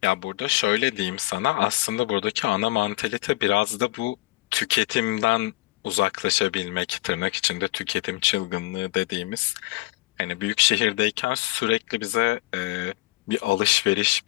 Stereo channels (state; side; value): quieter; right; 20.1 dB